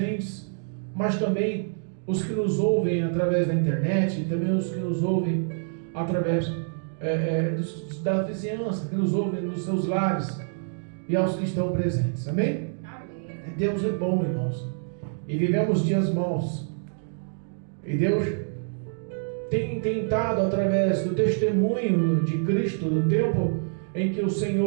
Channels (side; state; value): left; silent; digital silence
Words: mas também os que nos ouvem através da internet, e também os que nos ouvem através da vizinhança, que nos ouvem nos seus lares e aos que estão presentes. Amém? Amém. Deus é bom, irmãos, e vivemos dias maus, e Deus tem tentado, através do testemunho de Cristo, do tempo em que o